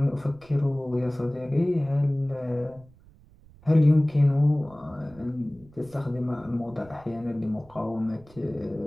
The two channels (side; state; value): right; noise; rumble, 25 dB below the sound